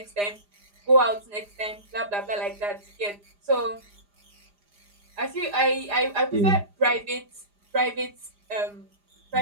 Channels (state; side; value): late; left; 4.9 ms